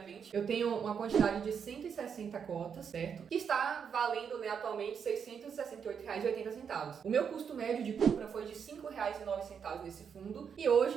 Eu tenho uma quantidade de 160 cotas, certo? Que está valendo, né, atualmente R$ 668,80. O meu custo médio de compra foi de R$ 5,09 nesse fundo, e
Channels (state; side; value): quieter; left; 7.0 dB